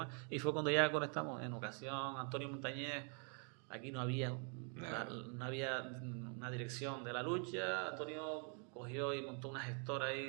y fue cuando ya conectamos. En ocasión, Antonio Montañez, aquí no había una dirección de la lucha. Antonio cogió y montó una gestora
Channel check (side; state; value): left; quieter; 39.4 dB